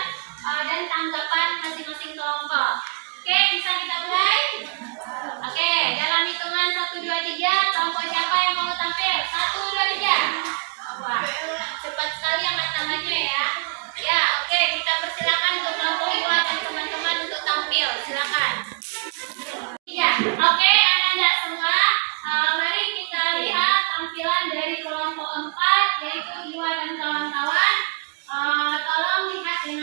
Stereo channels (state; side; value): quieter; left; 36.5 dB